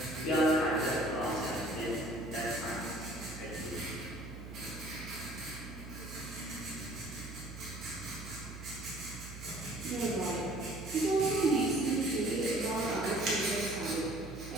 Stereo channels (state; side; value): noise; right; hum, 12 dB below the sound